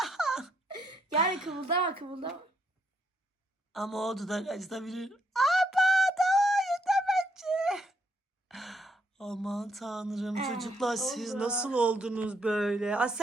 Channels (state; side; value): normal; both; correlation 0.74